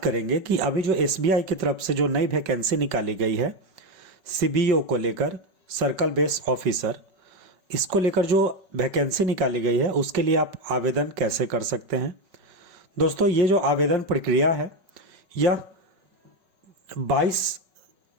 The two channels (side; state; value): left; late; 5.3 ms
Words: कि अभी जो एसबीआई की तरफ से जो नई वैकेंसी निकाली गई है सीबीओ को लेकर, सर्कल बेस ऑफिसर, इसको लेकर जो वैकेंसी निकाली गई है उसके लिए आप आवेदन कैसे कर सकते हैं। दोस्तों, ये जो आवेदन प्रक्रिया है यह